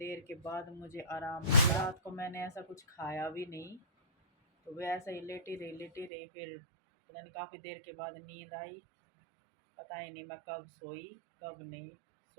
के बाद मुझे आराम मिला। रात को मैंने ऐसा कुछ खाया भी नहीं, तो वह ऐसा ही लेटी रही। फिर पता नहीं काफ़ी देर के बाद नींद आई। पता ही नहीं मैं कब सोई कब नहीं।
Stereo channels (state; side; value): drops out; left; at 6.1 s